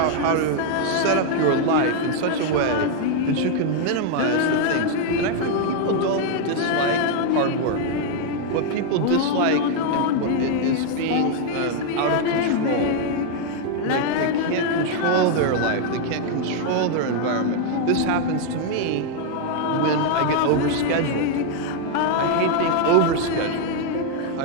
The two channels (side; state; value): both; different; correlation 0.00